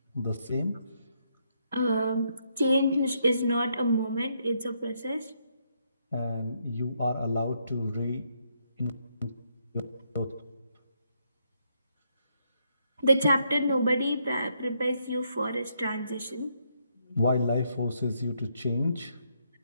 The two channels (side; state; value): both; inverted; correlation -0.75